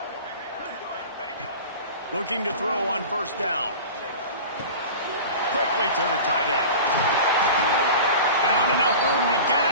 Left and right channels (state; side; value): inverted; both; correlation -0.35